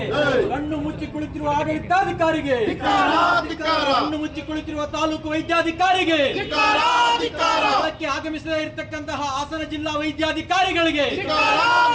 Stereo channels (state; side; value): identical; both; correlation 1.00